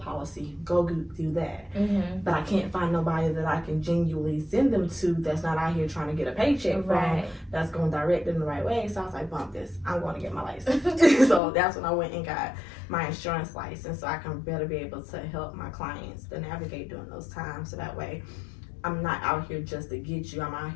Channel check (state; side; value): drops out; right; at 11.4 s